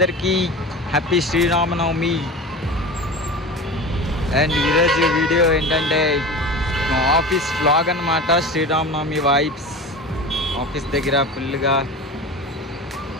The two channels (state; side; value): normal; both; correlation 0.31